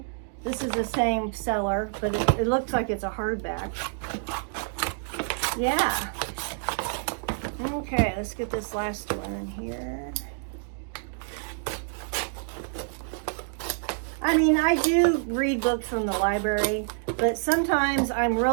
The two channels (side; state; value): left; silent; 60 dB below the other